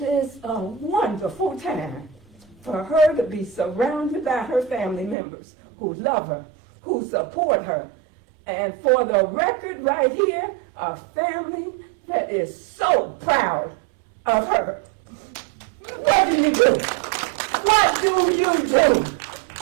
a wonderful time for her to be surrounded by her family members who love her, who support her, and for the record right here, a family that is so proud of her. What do you do? What do you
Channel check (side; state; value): left; drops out; at 5.2 s